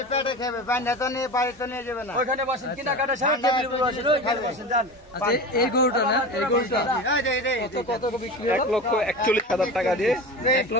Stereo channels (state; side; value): normal; both; correlation 0.29